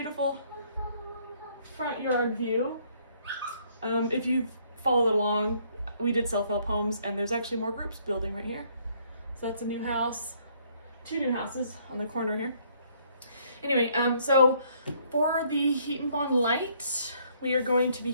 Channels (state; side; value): inverted; both; correlation -0.65